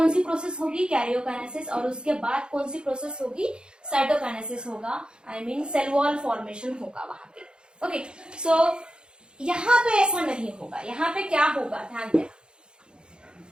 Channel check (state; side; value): late; left; 0.050 ms